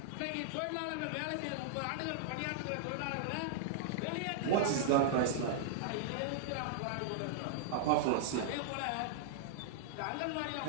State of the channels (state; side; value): different; both; correlation -0.01